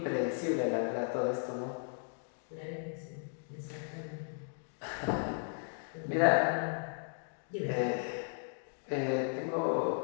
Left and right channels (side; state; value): right; silent; 54 dB below the other